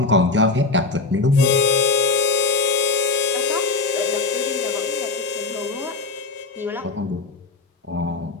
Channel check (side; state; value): right; quieter; 3.9 dB